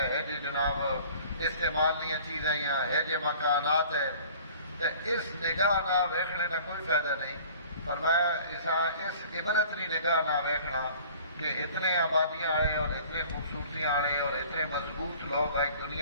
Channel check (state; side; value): inverted; both; correlation -0.48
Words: جی جناب استعمال نہیں چیزیں ہے جی مکانات ہے. تو اس نگاہ نہ ویکھنے کا کوئی فائدہ نہیں. فرمایا اس عبرت کی نگاہ نہ ویکھنا کہ اتنے آبادیاں آئے اور اتنے خوبصورتیاں آئے اور اتنے مضبوط لوگ آئے